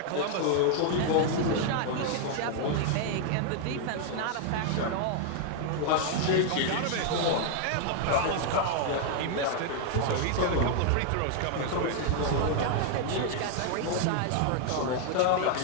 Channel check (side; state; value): both; different; correlation 0.00